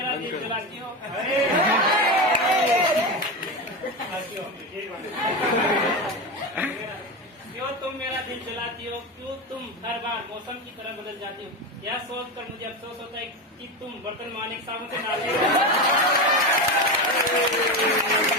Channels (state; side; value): normal; both; correlation 0.18